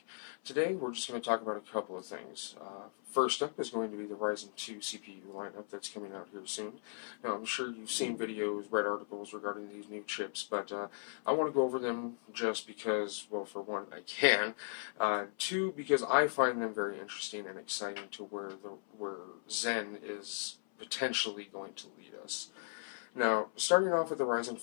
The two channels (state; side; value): silent; right; 53 dB below the other